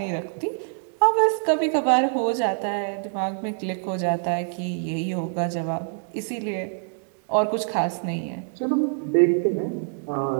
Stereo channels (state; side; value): silent; left; digital silence